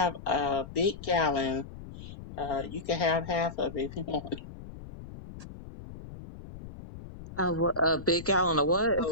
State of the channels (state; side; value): noise; left; rumble, 14 dB below the sound